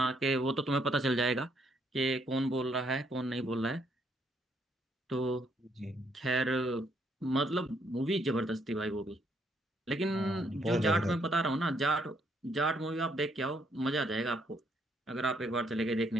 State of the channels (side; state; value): both; normal; correlation 0.71